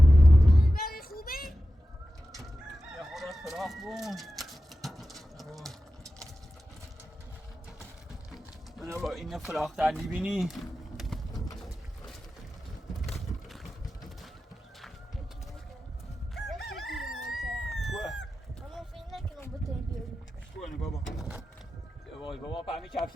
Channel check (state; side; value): normal; both; correlation 0.93